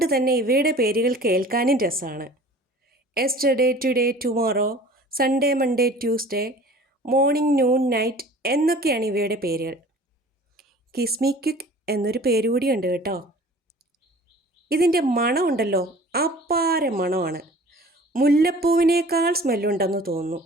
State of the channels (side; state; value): both; normal; correlation 0.46